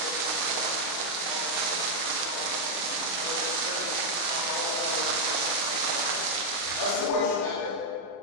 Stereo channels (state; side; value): late; right; 29 ms